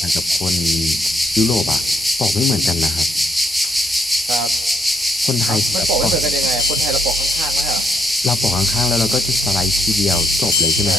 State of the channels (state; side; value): normal; both; correlation 0.74